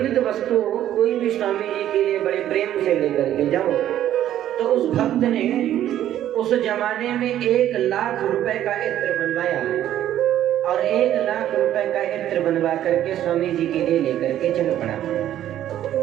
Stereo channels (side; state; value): left; quieter; 11.8 dB